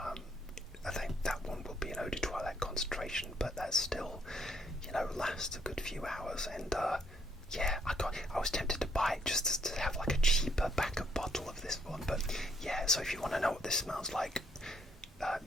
think that one will be an eau de toilette concentration, but that still, lasts a good few hours. And I was tempted to buy it just to have like a cheaper backup bottle of this one. But yeah, so if you want to know what this smells like,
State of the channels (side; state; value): both; normal; correlation 0.70